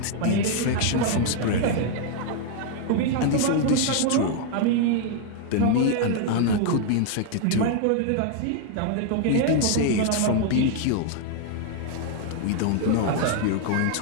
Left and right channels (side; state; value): both; different; correlation 0.00